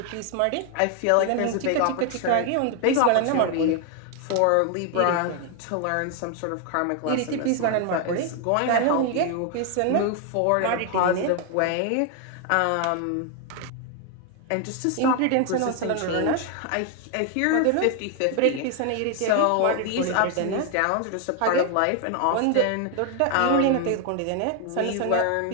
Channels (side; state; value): both; different; correlation 0.01